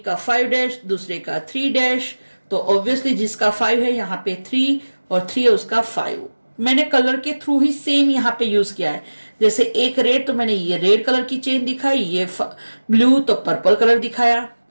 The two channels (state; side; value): inverted; both; correlation -1.00